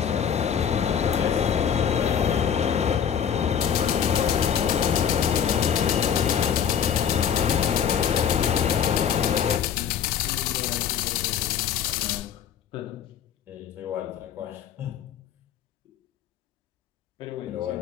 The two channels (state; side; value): quieter; right; 8.4 dB